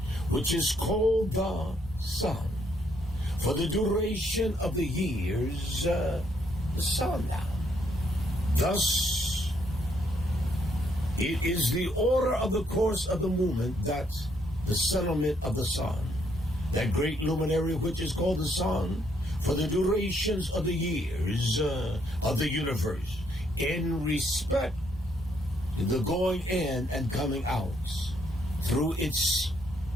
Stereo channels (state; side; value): normal; both; correlation 0.72